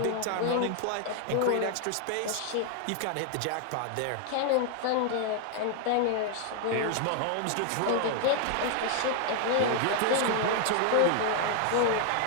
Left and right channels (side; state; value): both; different; correlation 0.00